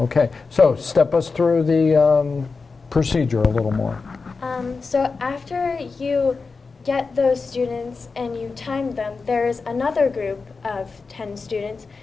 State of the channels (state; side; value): quieter; right; 4.4 dB